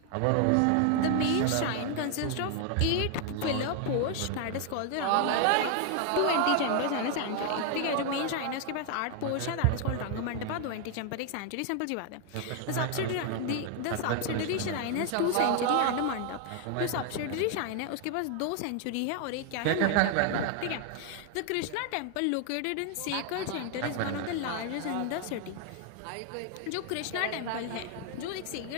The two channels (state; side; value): different; both; correlation 0.00